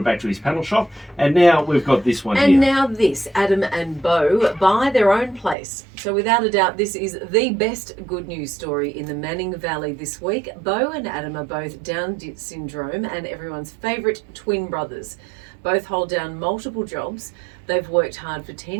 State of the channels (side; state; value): left; drops out; at 5.6 s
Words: back to his panel shop. And now we've got this one And here. now this, Adam and Bo buy their own place. So without a doubt, this is the best good news story in the Manning Valley this week. Bo and Adam are both Down syndrome and everyone's favourite twin brothers. Both hold down multiple jobs. They've worked hard for